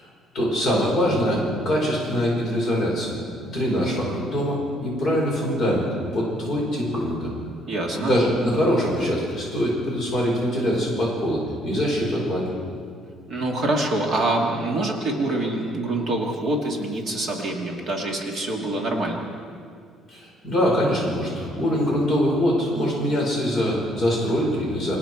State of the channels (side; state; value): both; normal; correlation 0.66